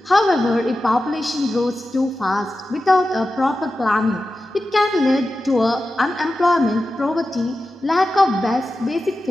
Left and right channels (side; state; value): both; normal; correlation 0.93